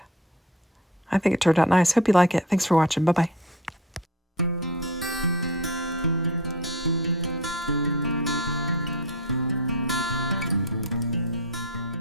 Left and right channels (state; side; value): normal; both; correlation 0.33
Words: I think it turned out nice. Hope you like it. Thanks for watching. Bye-bye.